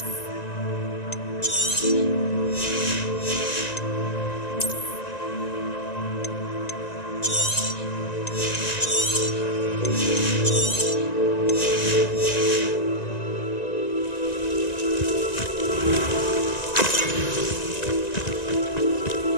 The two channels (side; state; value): right; late; 1.9 ms